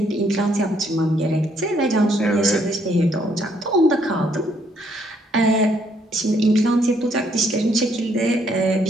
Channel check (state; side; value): normal; both; correlation 0.69